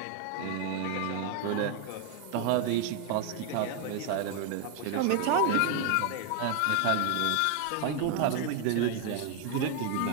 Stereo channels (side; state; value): both; different; correlation 0.01